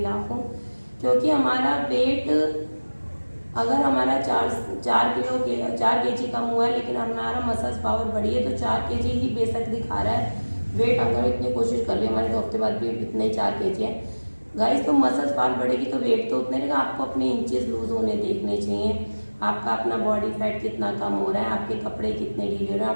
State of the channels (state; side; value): inverted; both; correlation -1.00